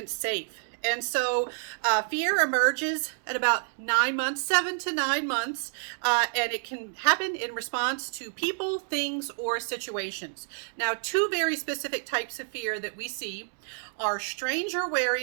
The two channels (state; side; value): silent; left; digital silence